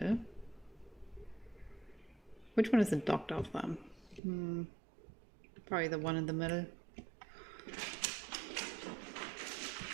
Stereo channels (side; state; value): left; drops out; at 4.2 s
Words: Which one is the doctor of them? Probably the one in the middle.